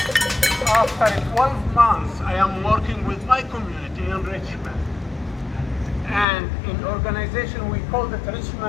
After 12 months, I am working with my community in Richmond. And in organization, we call it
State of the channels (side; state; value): right; drops out; at 6.2 s